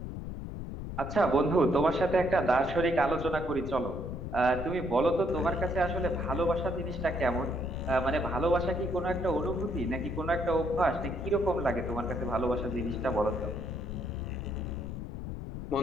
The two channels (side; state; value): left; noise; rumble, 7 dB below the sound